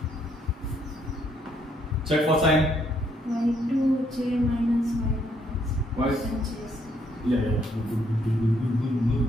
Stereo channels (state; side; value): normal; both; correlation 0.71